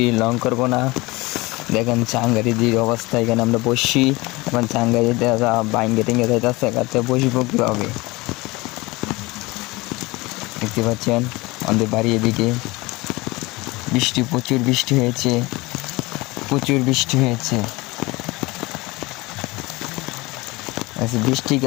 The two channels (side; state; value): right; quieter; 22.6 dB